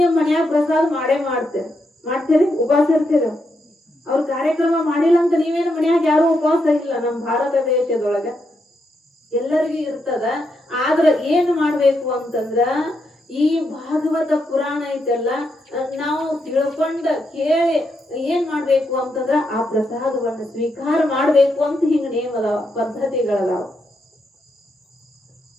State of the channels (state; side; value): normal; both; correlation 0.81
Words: ನಿಮ್ ಮನ್ಯಾಗ ಪ್ರಸಾದ ಮಾಡ್ತೀರಿ, ಉಪವಾಸ ಇರ್ತೀರ. ಅವ್ರ ಕಾರ್ಯಕ್ರಮ ಮಾಡಿಲ್ಲ ಅಂತ ನೀವೇನು ಮನ್ಯಾಗ ಯಾರು ಉಪವಾಸ ಇಲ್ಲ. ನಮ್ಮ ಭಾರತ ದೇಶದೊಳಗ ಎಲ್ಲರಿಗೂ ಇರ್ತದ. ಆದ್ರ ಏನ್ ಮಾಡ್ಬೇಕು ಅಂತಂದ್ರ ಈ ಭಾಗವತ ಪುರಾಣ ಐತೆಲ್ಲ ನಾವು ತಿಳ್ಕೊಂಡ ಕೇಳಿ ಏನ್ ಮಾಡ್ಬೇಕು ಅಂತಂದ್ರ ಆ ಪ್ರಸಾದವನ್ನ ಸ್ವೀಕಾರ ಮಾಡ್ಬೇಕು ಅಂತ ಹಿಂಗ ನೇಮ ಅದಾವ, ಪದ್ಧತಿಗಳದಾವ.